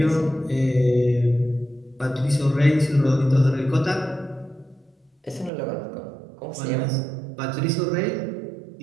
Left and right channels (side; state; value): left; drops out; at 5.5 s